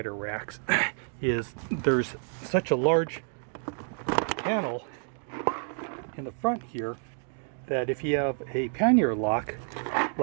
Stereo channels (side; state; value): left; silent; 59 dB below the other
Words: racks is there's such a large panel in the front here that if you have a pannier lock,